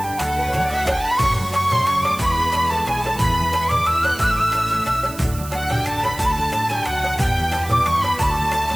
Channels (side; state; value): right; noise; hiss, 15 dB below the sound